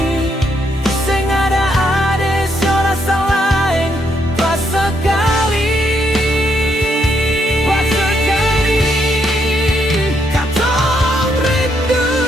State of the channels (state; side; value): normal; both; correlation 0.75